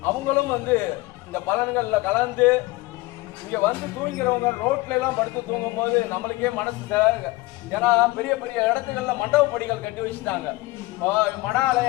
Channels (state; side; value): quieter; right; 20.8 dB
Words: அவங்களும் இந்த பலன்கள்ல கலந்து இங்க தூங்கிறவங்க ரோட்ல எல்லாம் படுத்து தூங்கும் போது நம்மளுக்கே மனசு, ஏன்னா பெரிய பெரிய இடத்துகள்ல மண்டபப்படிகள் கட்டி வச்சுட்டாங்க. மட